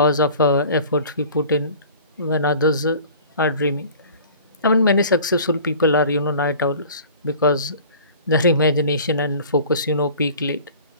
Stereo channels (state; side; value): inverted; both; correlation -0.45